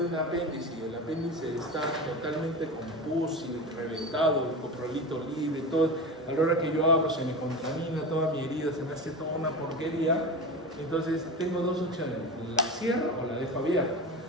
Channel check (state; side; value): normal; both; correlation 0.26